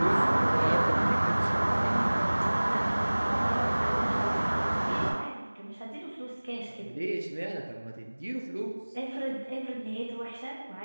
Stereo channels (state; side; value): inverted; both; correlation -1.00